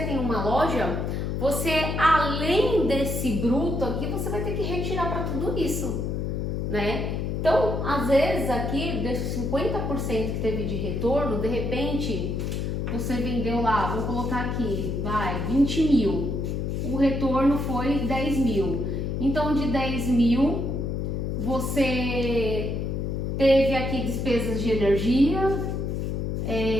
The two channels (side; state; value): left; noise; hum, 1 dB below the sound